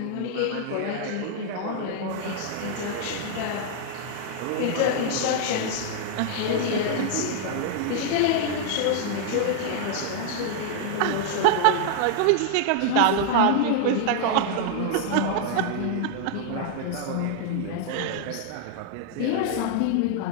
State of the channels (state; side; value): different; both; correlation 0.00